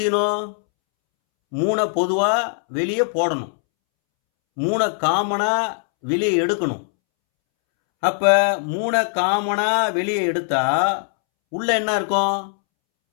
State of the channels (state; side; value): silent; right; 65 dB below the other